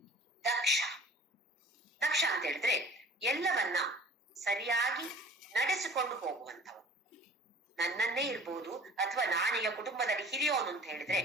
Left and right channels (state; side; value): normal; both; correlation 0.47